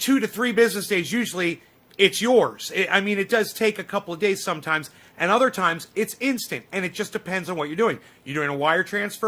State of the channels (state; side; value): identical; both; correlation 1.00